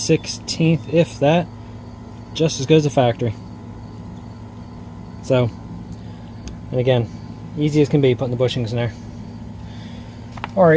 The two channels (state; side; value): identical; both; correlation 1.00